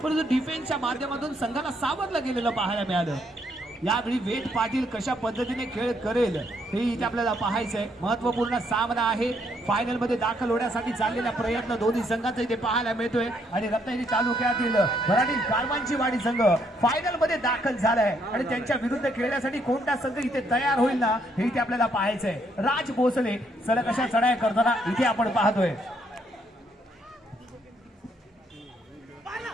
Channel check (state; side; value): normal; both; correlation 0.72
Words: परंतु डिफेन्सच्या माध्यमातून संघाला सावरलं गेलेलं पाहायला मिळालं. यावेळी वेद पाटील कशा पद्धतीने खेळ करेल हे इथे आपल्याला पाहायचंय. महत्वपूर्ण सामना आहे. फायनल मध्ये दाखल होण्यासाठी चाललेला प्रयत्न दोन्ही संघांचा इथे पाहायला मिळतोय आणि रत्नागिरी तालुक्यातील मराठी कारवांची वाडी संघ फायनल मध्ये दाखल झालाय आणि त्यांच्या विरुद्ध खेळण्यासाठी कोणता संघ इथे तयार होईल ना हे इथे आपल्याला पाहायचंय. राज भोसले सलग अशा चढाया करताना इथे आपण पाहतोय.